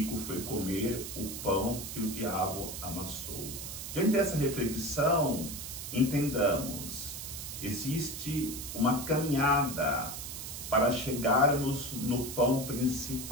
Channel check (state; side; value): noise; right; hiss, 8 dB below the sound